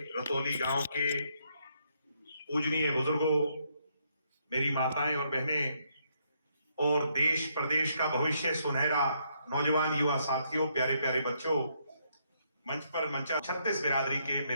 गांव के पूजनीय बुजुर्गों, मेरी माताएं और बहनें और देश प्रदेश का भविष्य सुनहरा नौजवान युवा साथियों, प्यारे प्यारे बच्चों, मंच पर मंचा 36 बिरादरी के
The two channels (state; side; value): inverted; both; correlation -0.74